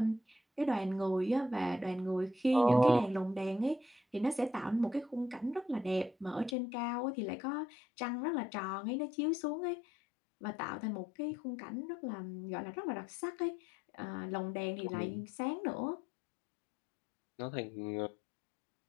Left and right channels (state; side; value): drops out; right; at 6.6 s